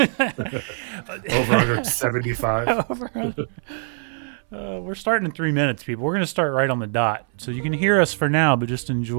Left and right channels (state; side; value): silent; left; 62 dB below the other